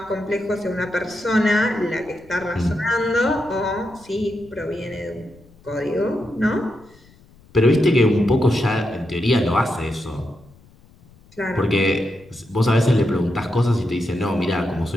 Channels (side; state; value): left; noise; rumble, 27 dB below the sound